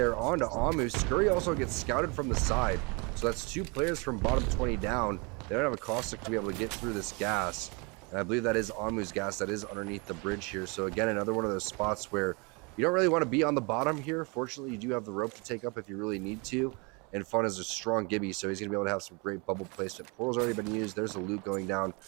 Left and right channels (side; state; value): left; quieter; 30.4 dB